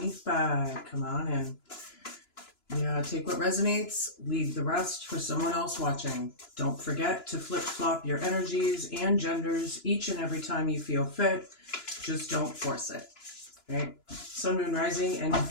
Come on in. Yeah, take what resonates, leave the rest for someone else watching. Don't forget to flip-flop your energies and genders each and every time you feel fit. Just don't force it. Right? Sun, Moon, Rising, and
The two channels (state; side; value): late; right; 2.9 ms